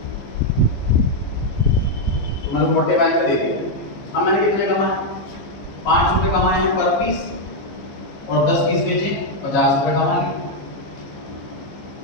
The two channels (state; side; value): late; right; 15 ms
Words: तो मैंने 45 का दे दिया। अब मैंने कितने कमाए? 5 रुपए कमाए हैं पर पीस, और 10 पीस बेचे 50 रुपए कमा लिए।